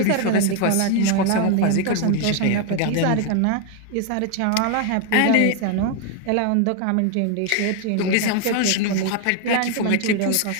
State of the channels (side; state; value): both; different; correlation 0.01